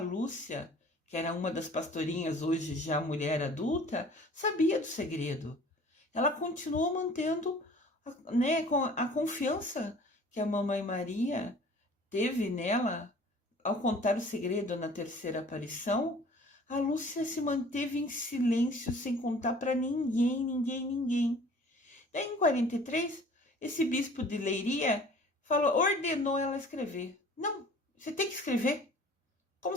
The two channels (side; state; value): both; normal; correlation 0.49